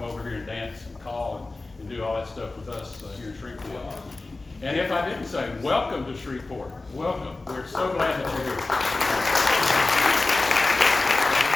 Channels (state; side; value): quieter; right; 3.3 dB